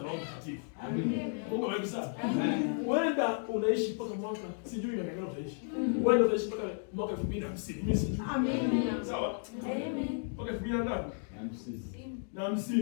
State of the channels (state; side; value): silent; right; 55 dB below the other